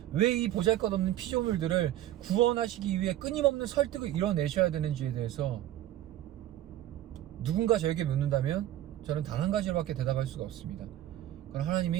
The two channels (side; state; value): left; quieter; 13.2 dB